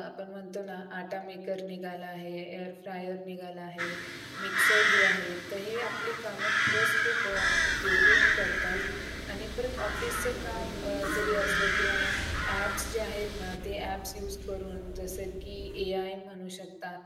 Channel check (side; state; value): both; identical; correlation 1.00